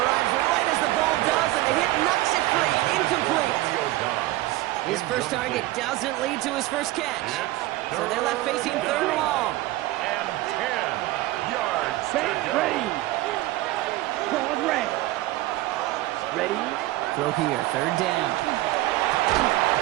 right as the ball does, and the hit knocks it free. Incomplete. His first target doesn't lead to his first catch. So they're left facing third and long. And 10 yards to Set, go. ready. Pause, red. Ready? Throw here, third down.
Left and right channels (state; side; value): quieter; left; 17.5 dB